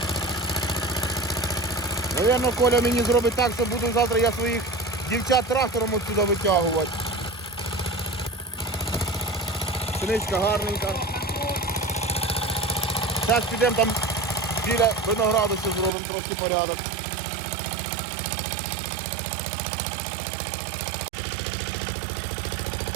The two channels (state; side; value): drops out; left; at 15.9 s